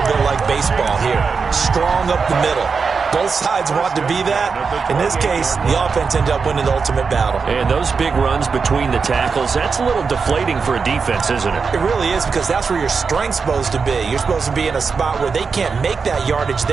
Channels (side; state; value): left; quieter; 5.2 dB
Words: bit like baseball here. Strong up the middle. Both sides want to be that. In this case, the offense ended up winning the ultimate battle. And those big runs between the tackles, that's a little deflating for a defense, isn't it? It really is, because that's where your strength's supposed to be. You're supposed to be in a spot where they can't make that yardage